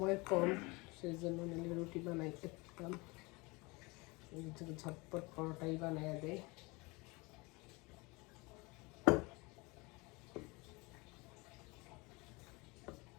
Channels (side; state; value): right; quieter; 25.6 dB